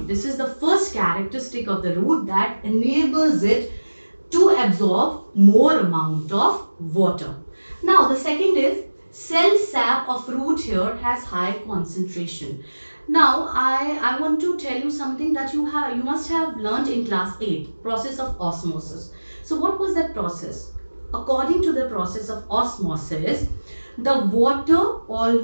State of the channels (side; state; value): both; inverted; correlation -1.00